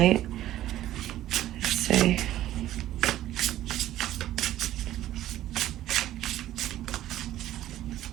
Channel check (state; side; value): quieter; left; 13.5 dB